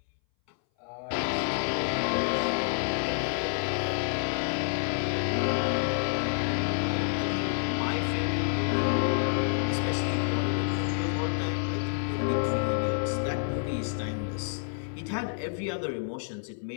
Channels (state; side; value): silent; right; 59 dB below the other